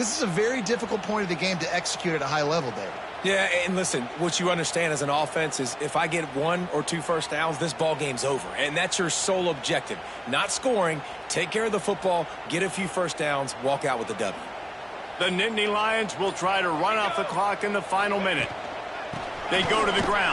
is a very difficult point of the game to execute at a high level, David. Yeah, and listen, what you understand as an offense is if I get 1 or 2 first downs, this ball game's over. And that's your sole objective. Not scoring, take care of the football, get a few first downs, walk out with the W. The Nittany Lions will try to run off the clock in the final minute. They go to the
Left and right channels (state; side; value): identical; both; correlation 1.00